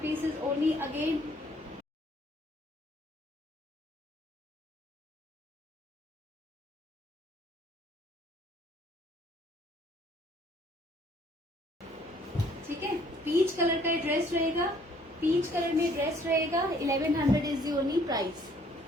piece is only again ठीक है। पीच कलर का ड्रेस रहेगा, पीच कलर में ड्रेस रहेगा। 1100 is the only price,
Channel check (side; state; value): both; normal; correlation 0.61